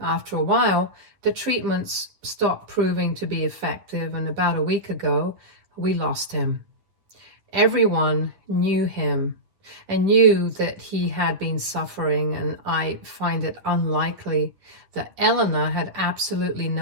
a while, the treatments stopped proving to be effective, and about a week ago, we lost him. Everyone knew him and knew that he had been suffering, and I find it unlikely that Elena had absolutely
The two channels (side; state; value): left; late; 11 ms